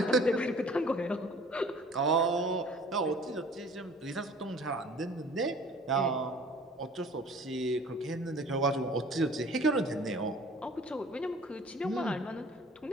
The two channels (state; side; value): normal; both; correlation 0.49